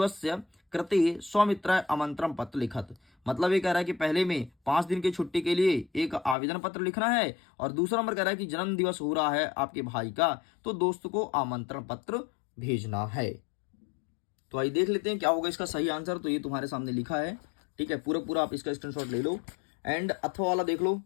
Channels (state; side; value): drops out; right; at 6.4 s